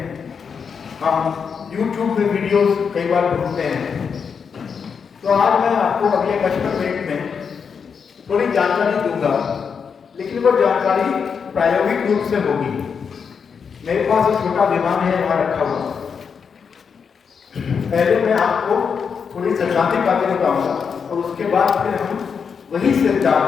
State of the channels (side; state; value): right; quieter; 6.3 dB